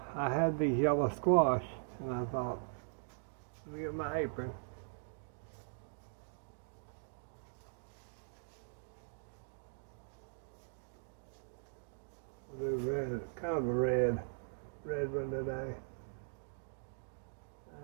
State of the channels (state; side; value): silent; left; digital silence